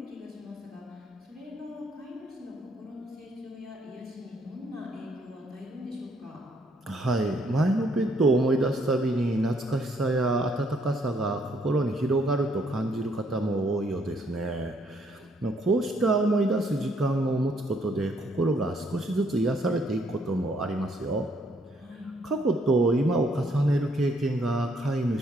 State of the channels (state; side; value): normal; both; correlation 0.69